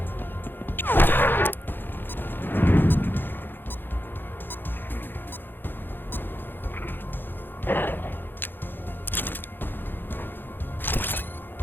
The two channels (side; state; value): right; late; 0.097 ms